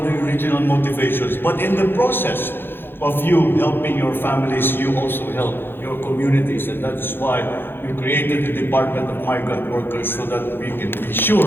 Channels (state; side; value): late; right; 0.10 ms